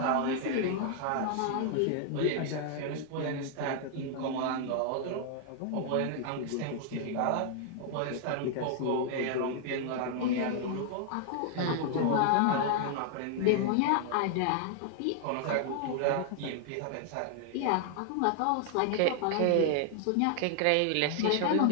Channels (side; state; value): both; different; correlation 0.00